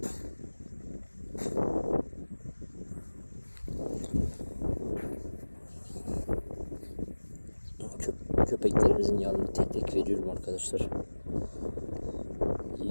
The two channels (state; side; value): inverted; both; correlation -1.00